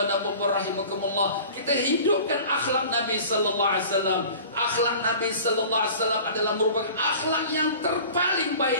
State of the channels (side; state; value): both; inverted; correlation -0.42